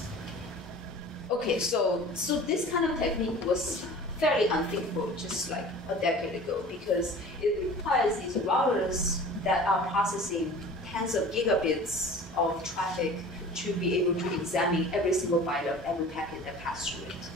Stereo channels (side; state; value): both; normal; correlation 0.42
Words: Okay, so this kind of technique was fairly unthinkable just like a decade ago, because it requires these routers that are processing tens of gigabits of traffic to be able to examine every single byte of every packet that passed through it